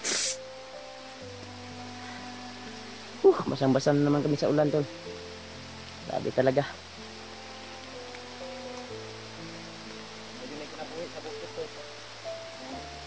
Basang-basa na naman kami sa ulan, tol. Sabi talaga. Medyo may kinabuhi sa bukit to.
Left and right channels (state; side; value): identical; both; correlation 1.00